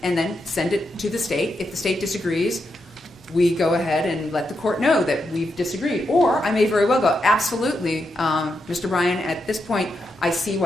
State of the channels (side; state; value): both; normal; correlation 0.84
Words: and then send it to the state. If the state disagrees, we go ahead and let the court know that we've disagreed. Or I may very well go, absolutely, Mr. Bryan, at this point, I see